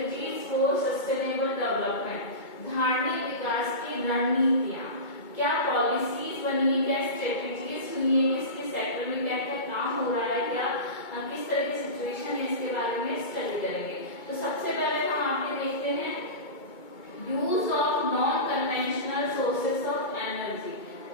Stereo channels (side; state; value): right; late; 2.2 ms